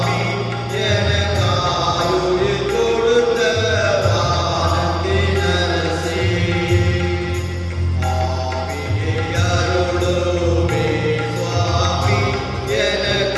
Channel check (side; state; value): both; identical; correlation 1.00